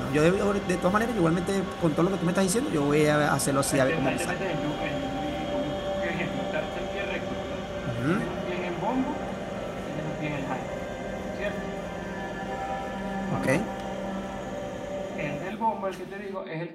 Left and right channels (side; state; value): both; identical; correlation 1.00